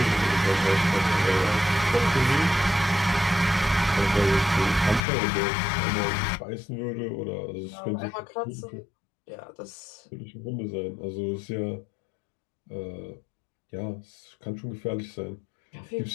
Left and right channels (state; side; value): drops out; right; at 5.0 s